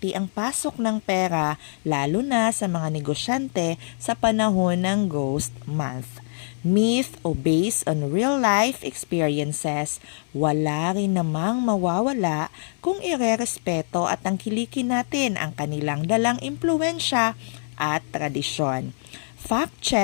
ang pasok ng pera, lalo na sa mga negosyante sa panahon ng Ghost Month. Myth o based on real life experiences, wala rin namang mawawala kung irerespeto at tangkilikin natin ang kanilang dalang impluensya at tradisyon. Fact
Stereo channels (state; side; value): silent; right; 62 dB below the other